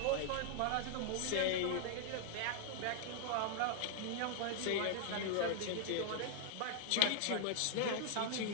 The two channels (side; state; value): both; different; correlation -0.01